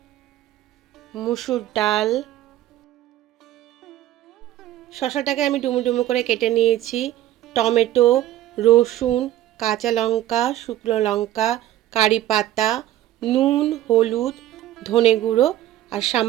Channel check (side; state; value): left; quieter; 13.5 dB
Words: মুসুর ডাল। শসাটাকে আমি ডুমো ডুমো করে কেটে নিয়েছি। টমেটো, রসুন, কাঁচা লঙ্কা, শুকনো লঙ্কা, কারি পাতা, নুন, হলুদ, ধনে গুঁড়ো আর